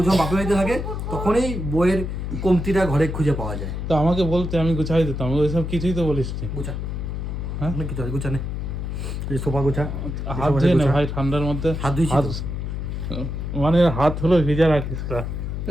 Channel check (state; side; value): noise; left; hum, 4 dB below the sound